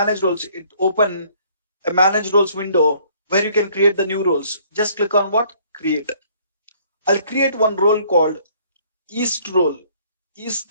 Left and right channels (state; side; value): inverted; both; correlation -0.60